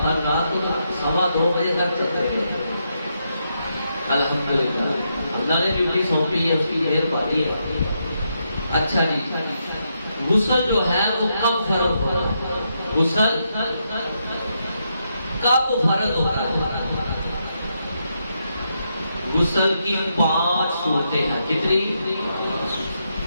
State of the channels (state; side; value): inverted; both; correlation -0.81